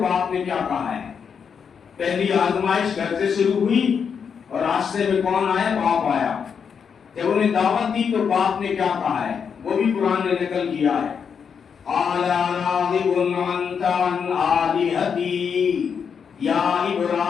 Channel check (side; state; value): right; quieter; 6.7 dB